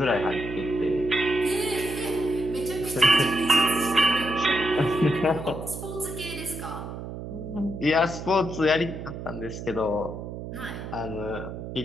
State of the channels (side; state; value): right; noise; hum, 8 dB below the sound